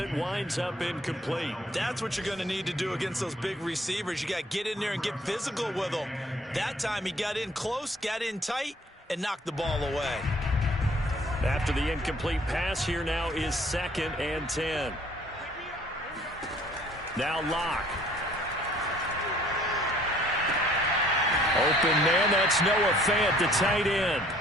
it winds up incomplete. That's what you're going to need to do against those big receivers. You got to get in there and get physical with them. That time he got in close, got in tight, and knocked the ball away. After the incomplete pass, here now is 2nd and 10. Now Locke. Open man, that's Noah Fant, the tight end.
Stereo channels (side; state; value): both; normal; correlation 0.57